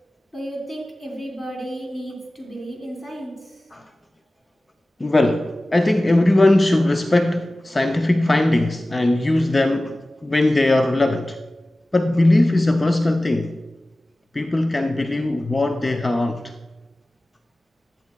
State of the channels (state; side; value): normal; both; correlation 0.97